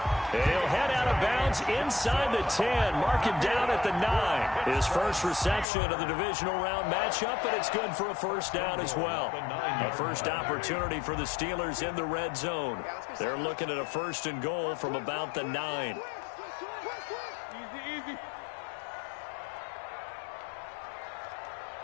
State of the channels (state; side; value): drops out; right; at 5.7 s